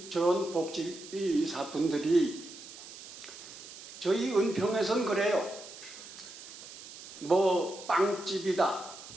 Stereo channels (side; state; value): right; noise; hiss, 15 dB below the sound